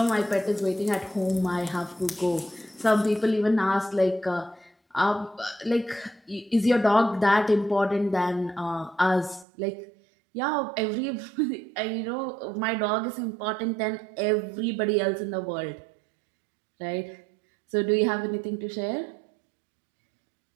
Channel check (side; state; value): left; drops out; at 9.5 s